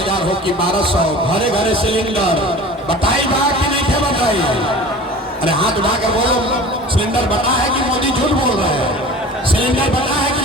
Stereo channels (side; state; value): both; normal; correlation 0.39